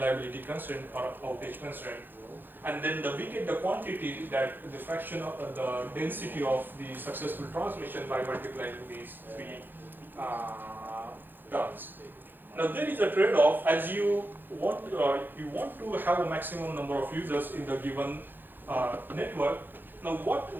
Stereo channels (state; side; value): late; left; 0.093 ms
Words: constraint or outage constraint. And then we get the quantity that the fraction of the density of the successful transmission by multiplying these three terms. Now there is a trade-off, as you want to have a maximum number of users in the given network. Now